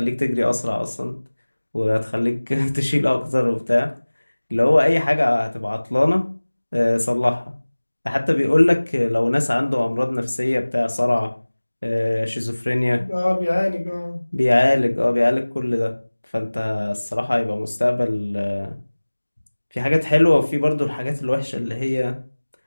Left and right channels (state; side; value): inverted; both; correlation -1.00